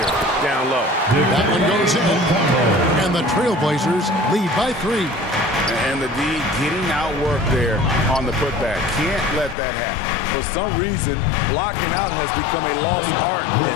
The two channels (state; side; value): drops out; right; at 9.6 s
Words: down low. That one goes in. And the Trailblazers lead by 3. And the D getting outworked there on the putback. Can't let that happen. For some reason, blocking out has become a lost art,